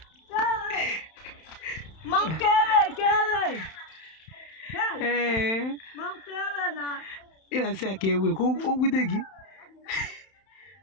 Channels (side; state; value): right; late; 31 ms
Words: Ina say ake we ko ogudegi.